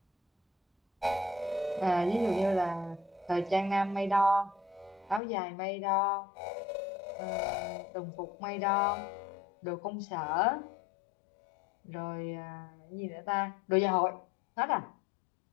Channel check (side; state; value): right; drops out; at 5.2 s